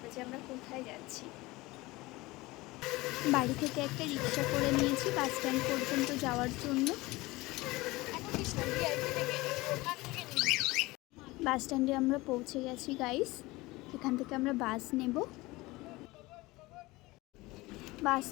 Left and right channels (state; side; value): quieter; right; 20.9 dB